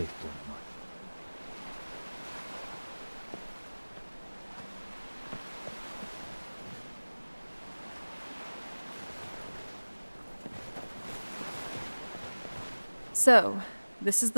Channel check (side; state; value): both; inverted; correlation -1.00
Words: Bloodline. So, this is